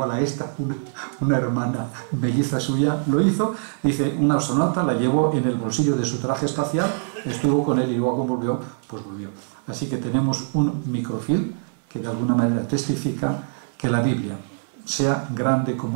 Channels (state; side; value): silent; left; 57 dB below the other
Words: a esta, una hermana melliza suya lo hizo. Dice, una astronauta la llevó en el bolsillo de su traje espacial, estuvo con él y luego volvió, pues volvió. Así que tenemos un microfilm que de alguna manera testifica que la Biblia, sea grande